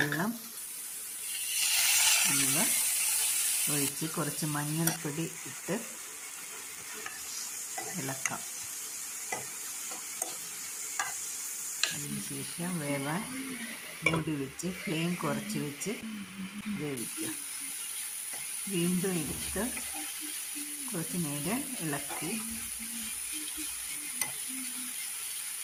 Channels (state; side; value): identical; both; correlation 1.00